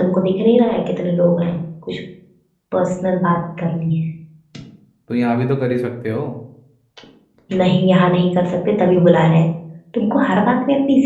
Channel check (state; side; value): identical; both; correlation 1.00